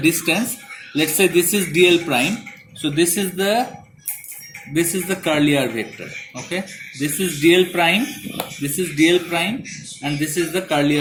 Let's say this is dl prime. So this is the curly r vector. Okay, this is dl prime, this is dl prime, and this is the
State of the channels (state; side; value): identical; both; correlation 1.00